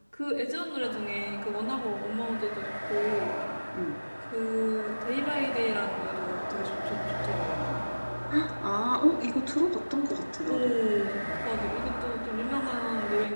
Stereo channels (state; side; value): inverted; both; correlation -1.00